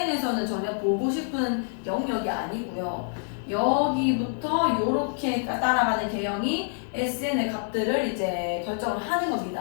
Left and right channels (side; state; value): right; silent; digital silence